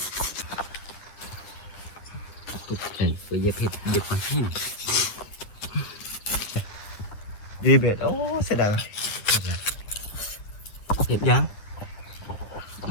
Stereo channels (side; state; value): right; late; 10 ms